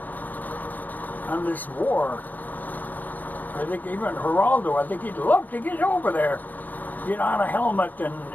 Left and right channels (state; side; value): late; right; 0.084 ms